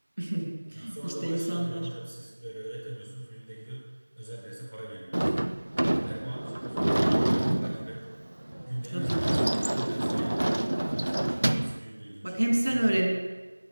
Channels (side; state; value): both; inverted; correlation -1.00